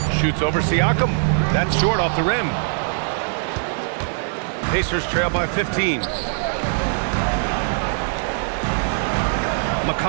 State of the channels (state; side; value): silent; left; digital silence